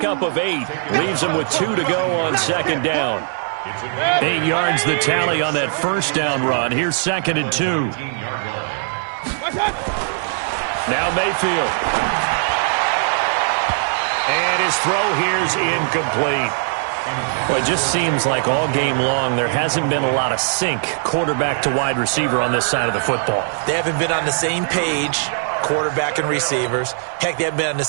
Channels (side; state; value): left; silent; digital silence